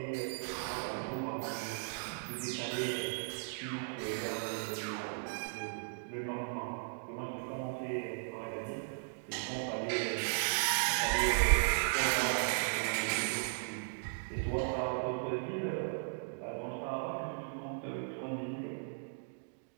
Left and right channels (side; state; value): left; silent; digital silence